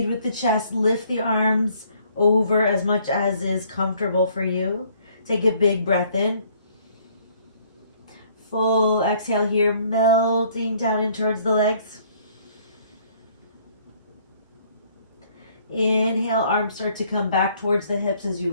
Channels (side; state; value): both; inverted; correlation -0.62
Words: with the chest. Lift the arms over as much as is comfortable for you. Take a big breath in. Full exhale here, melting down in towards the legs. Inhale, arms start to come back towards the hips as you